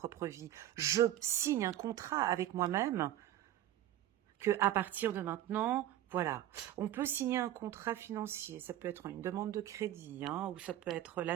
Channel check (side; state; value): left; quieter; 12.8 dB